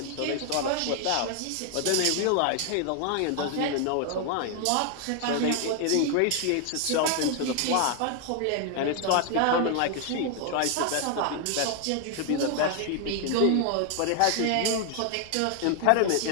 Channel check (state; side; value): different; both; correlation 0.00